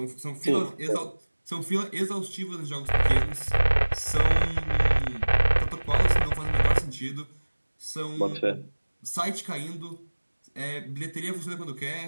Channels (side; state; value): both; inverted; correlation -1.00